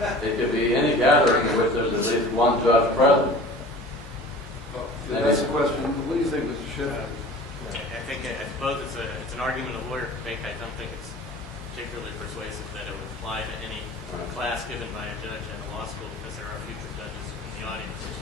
It could be any gathering in which there's at least one judge present. That's the question. What do you think, Mr. Schiff? I suppose it's an argument a lawyer could make. I don't think it's particularly persuasive that it would apply to any class given by a judge at a law school, because there are future judges in the audience.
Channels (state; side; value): normal; both; correlation 0.42